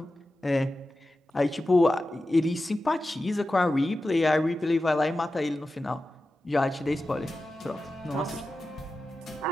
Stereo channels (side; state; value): both; normal; correlation 0.93